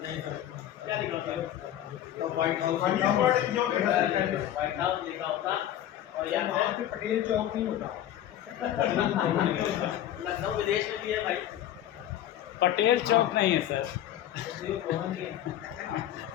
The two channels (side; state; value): right; quieter; 11.8 dB